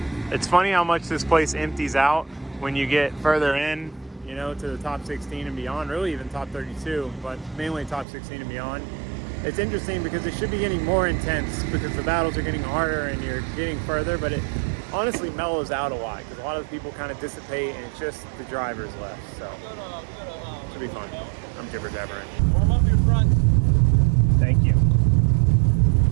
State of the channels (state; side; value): drops out; left; at 8.1 s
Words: It's funny how much this place empties out when you get further in, you know, to the top 16 and beyond, really even top 32, but mainly top 16 and beyond. It's interesting because it should be getting more intense because the battles are getting harder and you're getting further, but it honestly mellows out a lot because a lot of the people kind of dissipate and it's just the drivers left. So it should be fun. I'm jibber jabbering. Warm up your front. Thank you.